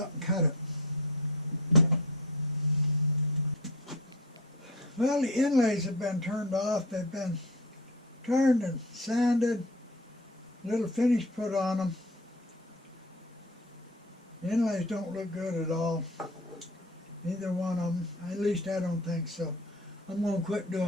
and cut it. Well, the inlays have been turned off. They've been turned and sanded, a little finish put on them. The inlays don't look good at all. Neither one of them. At least I don't think so. I'm going to quit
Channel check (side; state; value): both; normal; correlation 0.34